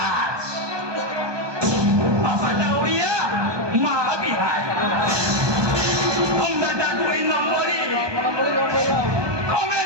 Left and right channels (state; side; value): late; left; 1.2 ms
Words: बापाटा ओडिया माता बिहार हमरा 2 नंबरी